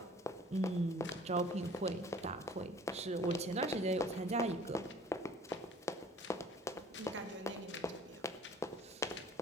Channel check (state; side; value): normal; both; correlation 0.51